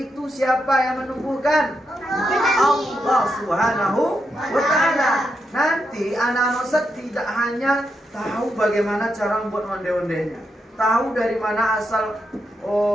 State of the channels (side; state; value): both; normal; correlation 0.83